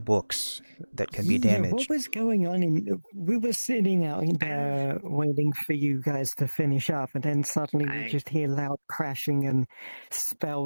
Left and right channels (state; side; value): inverted; both; correlation -1.00